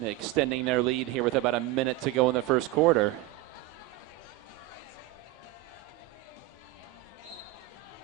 extending their lead here with about a minute to go in the first quarter.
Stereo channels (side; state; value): left; quieter; 16.7 dB